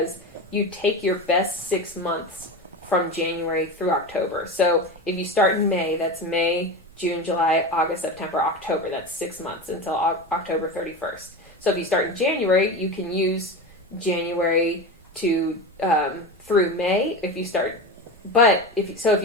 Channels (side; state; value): both; normal; correlation 0.25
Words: you take your best 6 months from January through October. So if you start in May, that's May, June, July, August, September, October. That's 6 months until October 31st. So if you start in January, you can use January to through May. If you sign